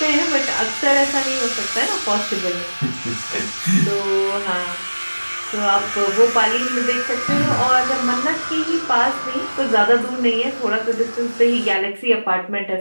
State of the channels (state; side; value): inverted; both; correlation -1.00